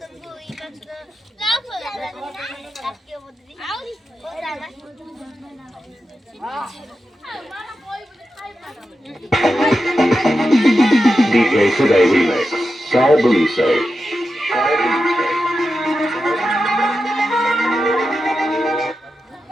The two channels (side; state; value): both; normal; correlation 0.90